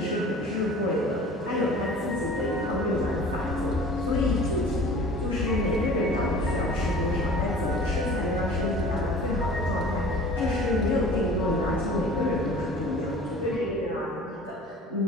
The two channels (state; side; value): normal; both; correlation 0.44